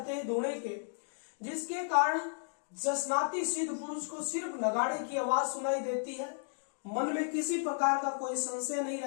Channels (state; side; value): silent; right; digital silence